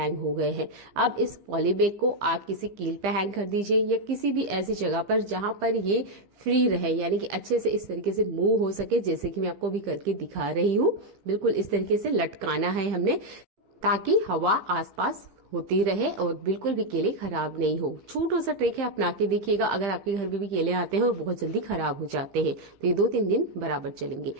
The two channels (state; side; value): late; left; 15 ms